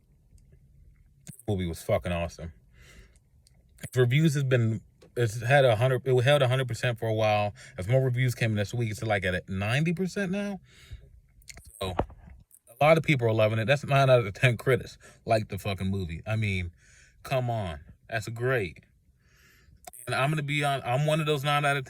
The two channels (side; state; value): both; identical; correlation 1.00